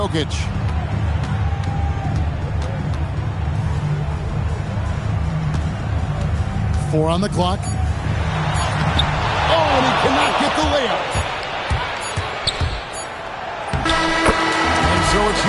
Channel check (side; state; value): both; identical; correlation 1.00